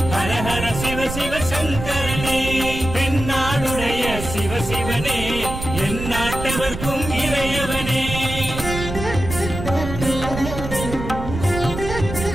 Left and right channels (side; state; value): right; noise; rumble, 7 dB below the sound